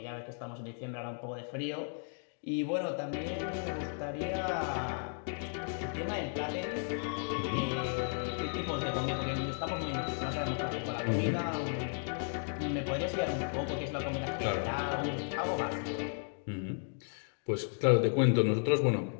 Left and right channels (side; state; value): right; silent; 55 dB below the other